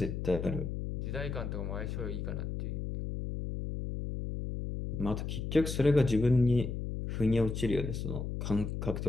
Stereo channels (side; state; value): left; noise; hum, 4 dB below the sound